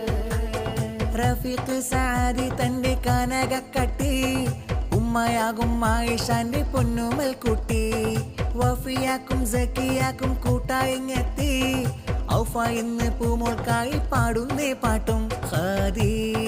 റഫീഖ് സാദി തന്റെ കനകക്കട്ടി ഉമ്മയാകും ആയിഷാന്റെ പൊന്നുമൽ കുട്ടി വഫിയാക്കും സക്കിയാക്കും കൂട്ടായിങ്ങെത്തി ഔഫ ഇന്ന് പൂമോൾക്കായി പാടുന്നേ പാട്ടും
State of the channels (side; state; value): both; identical; correlation 1.00